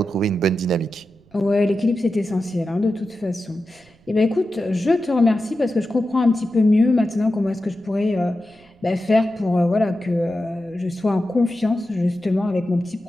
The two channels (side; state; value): right; noise; rumble, 29 dB below the sound